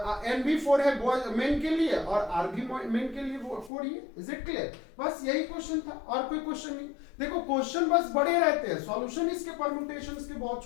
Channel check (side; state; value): right; drops out; at 3.7 s